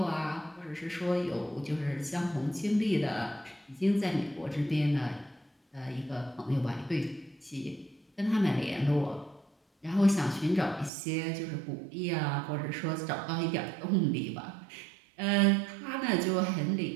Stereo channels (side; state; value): left; drops out; at 10.9 s